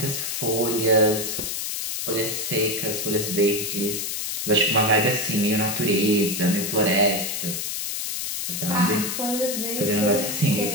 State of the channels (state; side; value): noise; left; hiss, 3 dB below the sound